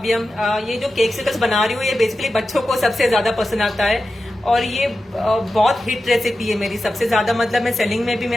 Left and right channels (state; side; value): normal; both; correlation 0.92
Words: हम। ये जो केक्सिकल्स बना रही हूँ ये बेसिकली बच्चों को सबसे ज्यादा पसंद आता है, और ये बहुत हिट रेसिपी है मेरी, सबसे ज्यादा मतलब मैं सेलिंग में भी